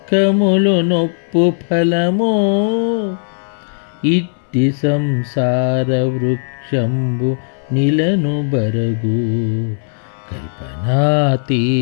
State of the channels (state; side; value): silent; right; 60 dB below the other